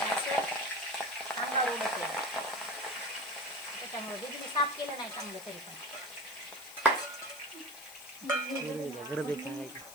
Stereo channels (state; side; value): noise; left; hiss, 15 dB below the sound